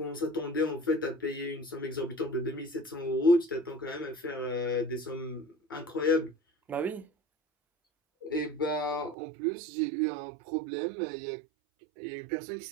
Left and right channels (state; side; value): drops out; left; at 9.2 s